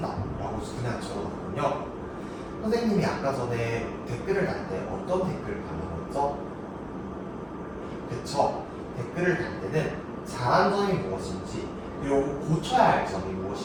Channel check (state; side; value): identical; both; correlation 1.00